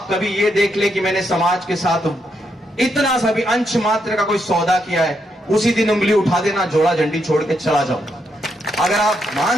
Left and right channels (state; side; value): normal; both; correlation 0.80